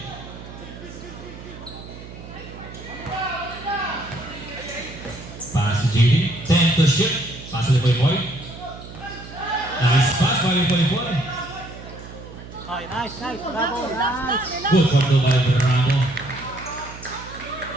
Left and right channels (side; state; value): right; noise; hum, 14 dB below the sound